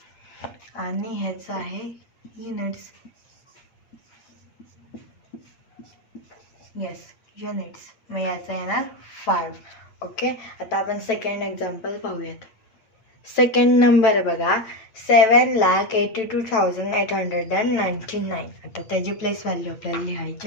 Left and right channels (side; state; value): right; late; 9.1 ms